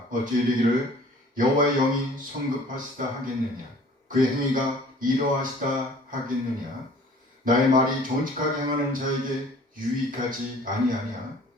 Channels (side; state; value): both; normal; correlation 0.50